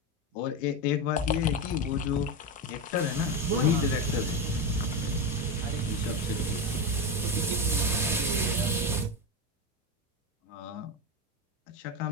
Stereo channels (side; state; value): both; normal; correlation 0.15